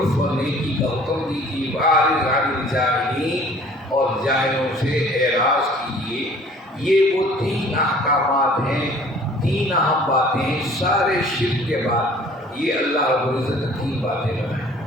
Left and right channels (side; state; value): both; normal; correlation 0.52